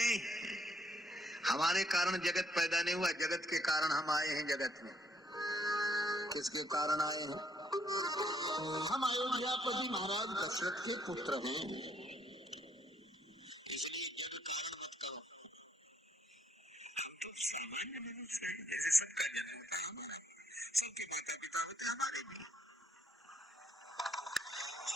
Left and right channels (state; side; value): normal; both; correlation 0.70